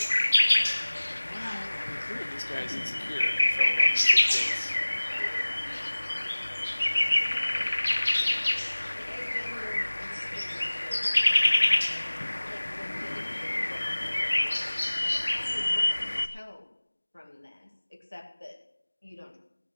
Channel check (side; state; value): both; inverted; correlation -1.00